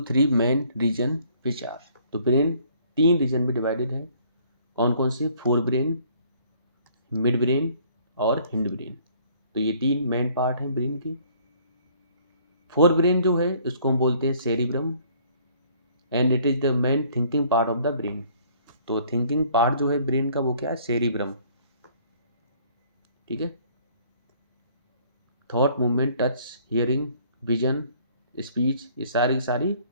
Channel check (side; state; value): both; inverted; correlation -0.59